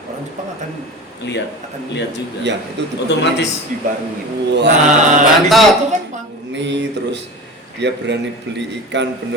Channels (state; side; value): normal; both; correlation 0.32